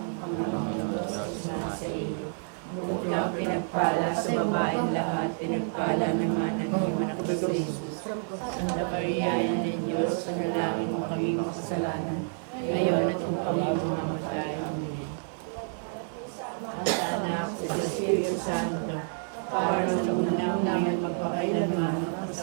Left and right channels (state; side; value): silent; left; 59 dB below the other